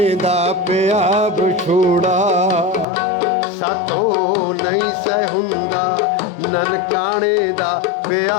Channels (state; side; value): drops out; right; at 2.9 s